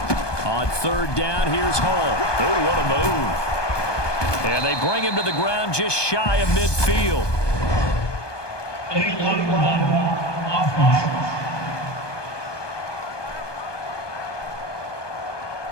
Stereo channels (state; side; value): late; right; 1.2 ms